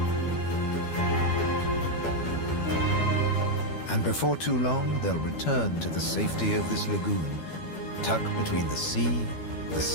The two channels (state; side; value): late; right; 12 ms